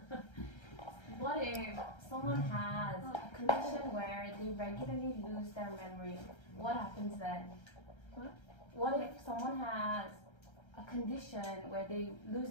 What if someone has a condition where they regularly lose their memory? What happens then? What if someone has a condition where they lose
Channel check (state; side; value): late; right; 1.3 ms